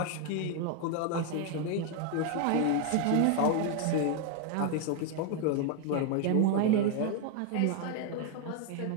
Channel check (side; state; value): both; different; correlation 0.01